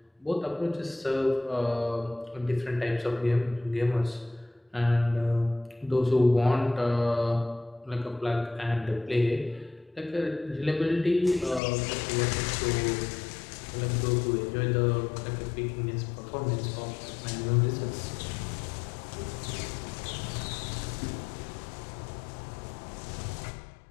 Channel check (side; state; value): right; drops out; at 11.6 s